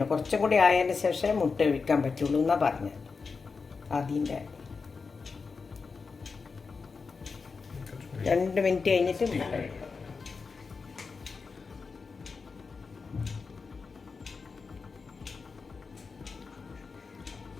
കുറച്ചും കൂടി ആയതിന് ശേഷം മുട്ട ഒഴിക്കാൻ പറ്റുള്ളൂ എന്നാണ് പറഞ്ഞത്. അതിൻ്റെ 2 മിനിറ്റ് കഴിഞ്ഞിട്ട് മുട്ട ഒഴിക്കണം.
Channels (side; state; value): right; quieter; 4.8 dB